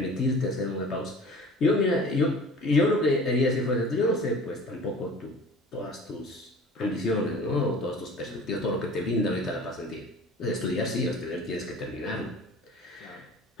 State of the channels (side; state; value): both; normal; correlation 0.44